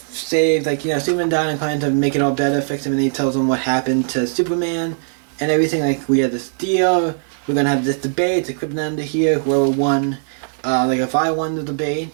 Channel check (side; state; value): left; silent; digital silence